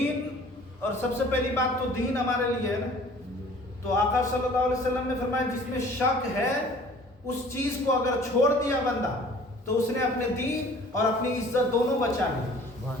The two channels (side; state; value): both; normal; correlation 0.50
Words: اور سب سے پہلی بات تو دین ہمارے لیے ہے نا، تو آقا صلی اللہ علیہ وسلم نے فرمایا جس میں شک ہے اس چیز کو اگر چھوڑ دیا بندہ تو اس نے اپنے دین اور اپنی عزت دونوں بچا لی۔